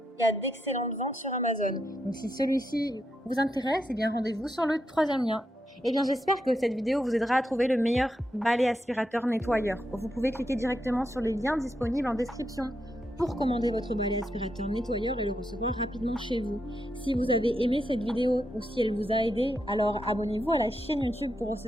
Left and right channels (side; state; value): both; normal; correlation 0.83